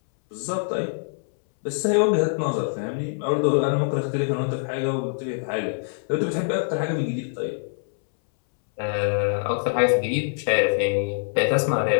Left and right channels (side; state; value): right; silent; 62 dB below the other